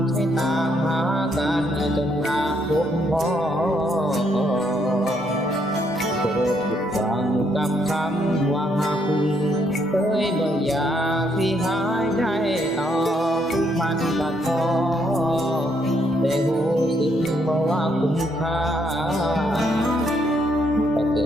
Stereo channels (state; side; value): normal; both; correlation 0.73